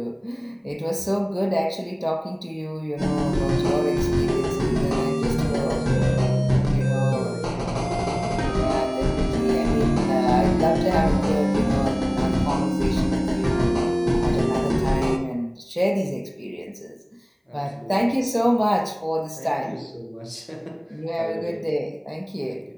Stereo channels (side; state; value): both; identical; correlation 1.00